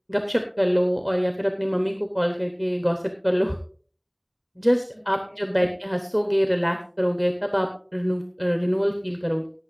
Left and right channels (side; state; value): both; identical; correlation 1.00